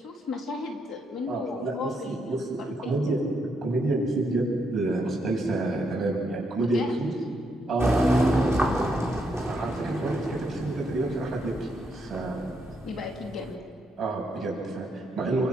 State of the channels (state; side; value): normal; both; correlation 0.78